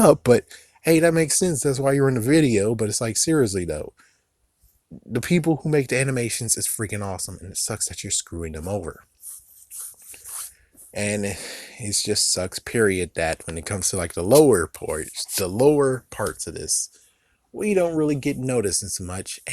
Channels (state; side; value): identical; both; correlation 1.00